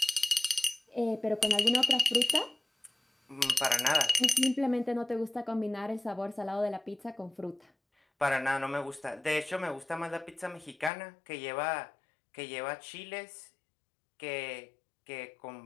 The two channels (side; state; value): right; drops out; at 10.9 s